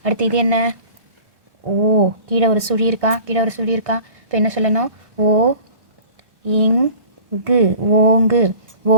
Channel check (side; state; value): left; late; 1.2 ms